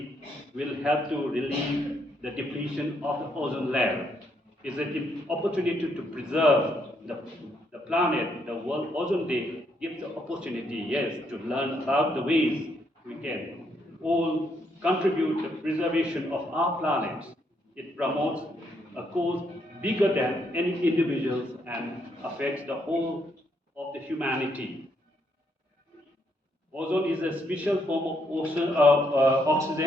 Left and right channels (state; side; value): normal; both; correlation 0.75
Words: will help to relieve the depletion of the ozone layer. It's an opportunity to preserve the planet. The World Ozone Day gives the opportunity, yes, to learn about the ways we can all contribute to the preservation of our planet. It promotes a cause bigger than any individuals and affects the whole of the humanity. Ozone is a special form of